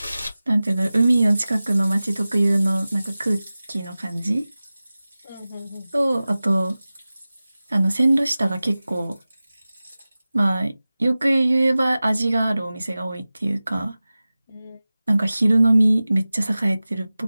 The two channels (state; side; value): inverted; both; correlation -0.97